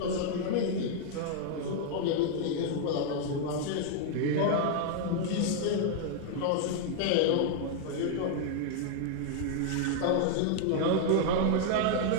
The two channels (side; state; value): both; different; correlation 0.00